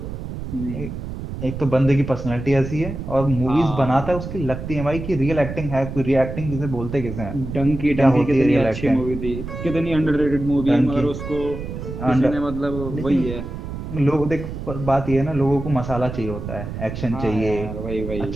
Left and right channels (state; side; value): noise; right; rumble, 8 dB below the sound